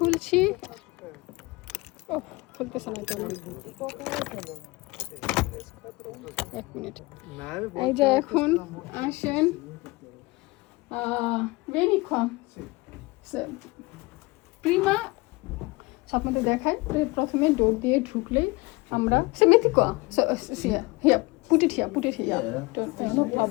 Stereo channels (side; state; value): right; quieter; 23.6 dB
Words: ও খুলতেছে না কেন? এক মিনিট। এই যে এখন আসেন ভেরিকন প্রিমা আপনাদের দেখায়। প্রথমে ডোর দিয়ে ঢুকলেই আমরা সেমেথিকোয়া হিয়া পুটিট হিয়া নো